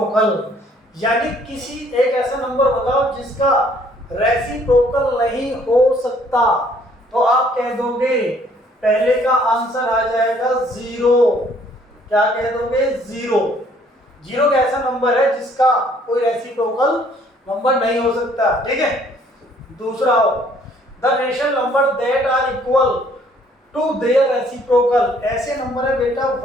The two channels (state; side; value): normal; both; correlation 0.62